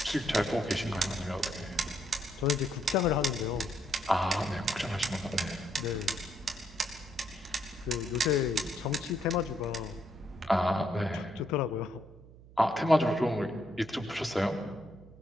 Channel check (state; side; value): noise; right; hum, 21 dB below the sound